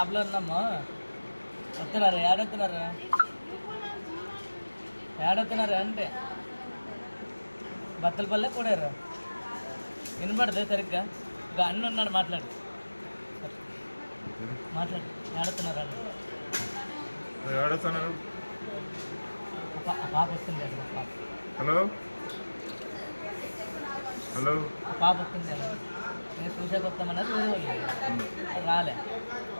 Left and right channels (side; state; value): both; inverted; correlation -1.00